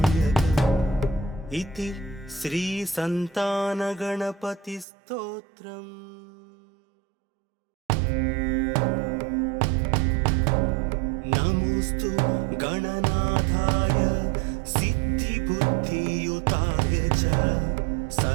इति श्रीसन्तानगणपतिस्तोत्रम्। नमोऽस्तु गणनाथाय सिद्धिबुद्धियुताय च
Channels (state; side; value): drops out; left; at 4.9 s